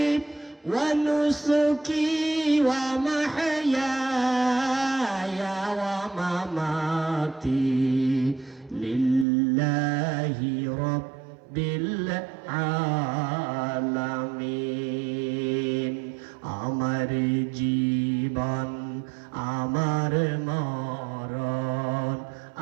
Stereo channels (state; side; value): drops out; left; at 9.2 s